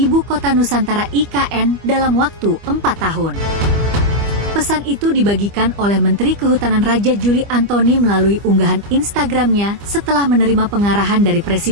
Kota Nusantara IKN dalam waktu 4 tahun. Pesan itu dibagikan oleh Menteri Kehutanan Raja Juli Antoni melalui unggahan Instagramnya setelah menerima pengarahan dari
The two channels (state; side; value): late; left; 25 ms